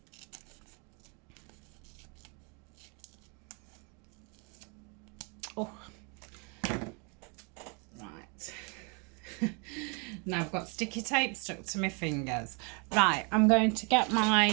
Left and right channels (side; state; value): left; quieter; 34.3 dB